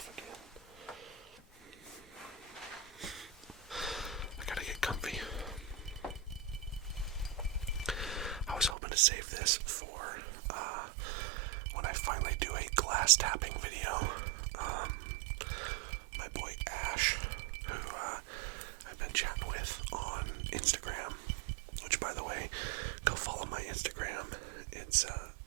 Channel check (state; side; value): drops out; left; at 8.8 s